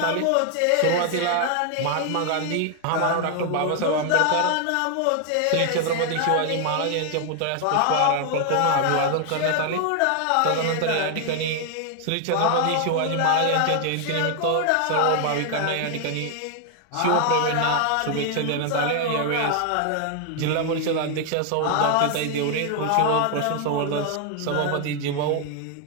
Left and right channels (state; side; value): different; both; correlation 0.00